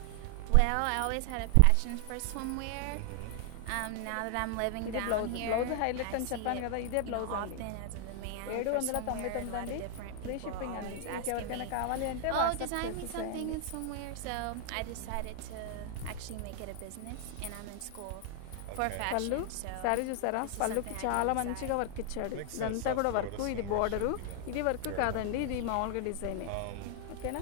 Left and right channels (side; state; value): both; different; correlation 0.00